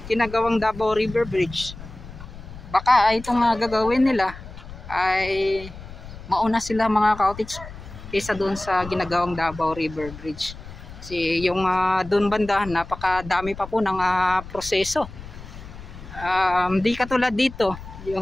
ginagawang Davao River Bridge. Baka itong gagawin nila ay mauna sila mga cottage kaysa doon sa ginagawang Davao River Bridge. Kasi yung doon banda napakadami pa po ng proseso. Di katulad dito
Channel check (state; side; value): noise; left; rumble, 14 dB below the sound